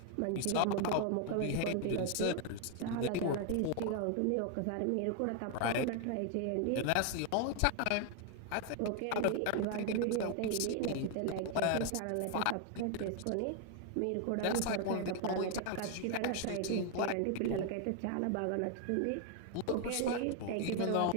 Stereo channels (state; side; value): different; both; correlation 0.00